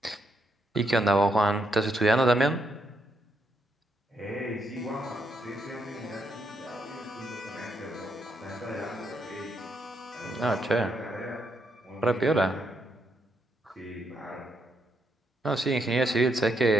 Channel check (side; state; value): both; normal; correlation 0.78